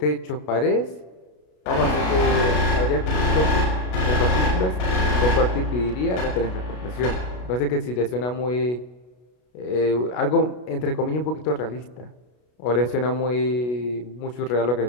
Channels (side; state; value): right; late; 33 ms